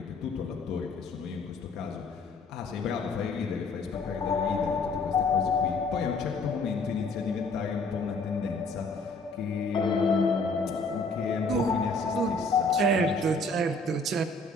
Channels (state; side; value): quieter; right; 3.1 dB